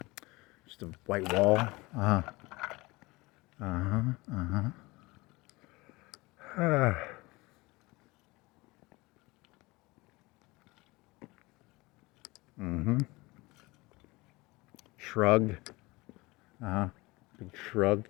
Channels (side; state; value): right; quieter; 22.8 dB